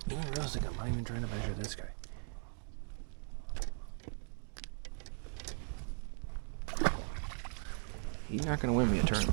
I'm not even trying to measure this guy. He's not going to win me a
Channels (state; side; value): silent; left; 52 dB below the other